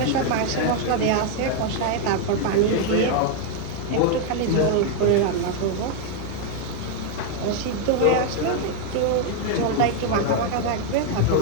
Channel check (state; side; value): different; both; correlation 0.00